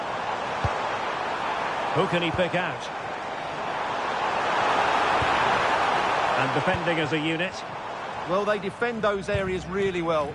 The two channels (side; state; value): both; identical; correlation 1.00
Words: Who can he pick out? And defending as a unit. Well, they defend those areas really well.